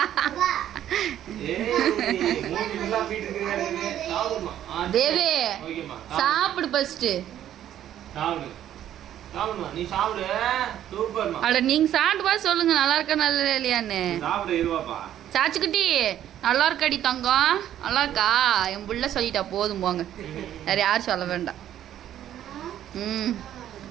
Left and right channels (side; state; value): left; quieter; 11.3 dB